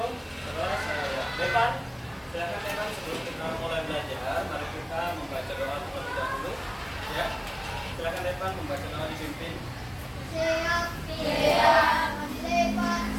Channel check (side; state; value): both; identical; correlation 1.00